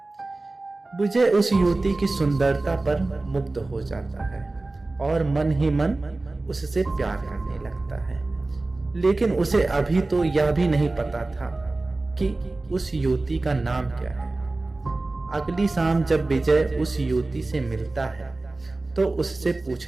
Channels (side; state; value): left; quieter; 3.1 dB